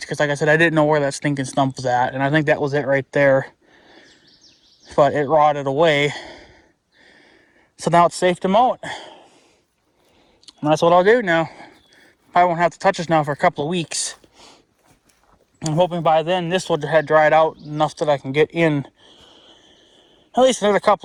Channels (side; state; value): both; identical; correlation 1.00